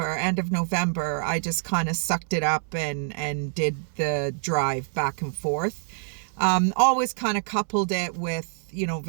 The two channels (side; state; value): left; silent; 61 dB below the other